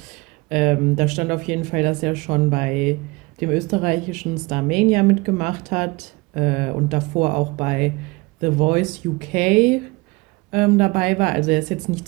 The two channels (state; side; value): quieter; left; 24.2 dB